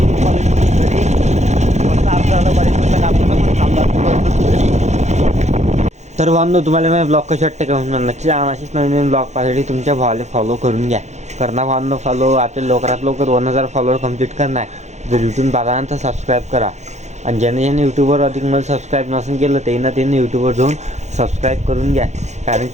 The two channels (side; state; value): left; late; 0.33 ms